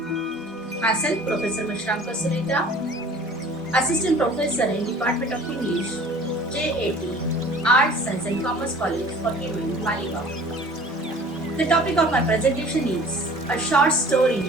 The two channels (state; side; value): normal; both; correlation 0.47